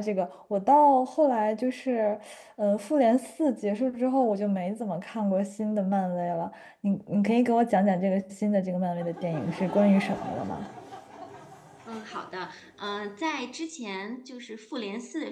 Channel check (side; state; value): both; identical; correlation 1.00